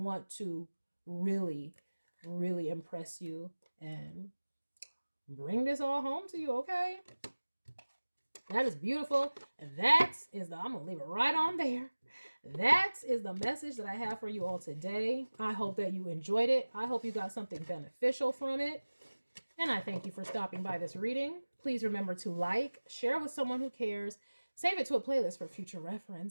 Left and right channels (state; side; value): inverted; both; correlation -1.00